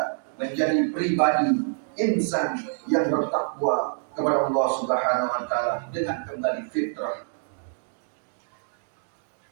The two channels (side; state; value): left; silent; digital silence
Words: menjadi pribadi insan yang bertakwa kepada Allah Subhanahu wa Ta'ala dengan kembali fitrah.